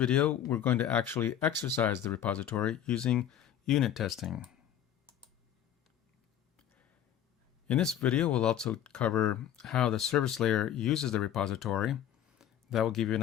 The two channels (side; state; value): right; quieter; 10.4 dB